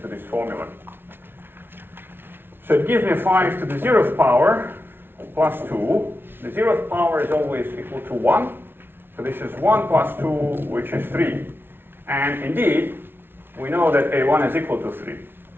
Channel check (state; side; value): late; left; 0.11 ms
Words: this formula. So it gives me 5 to the 0th power plus 2. The 0th power is always equal to 1. So this is 1 plus 2, which is 3. And indeed, we know that A1 is equal to 3.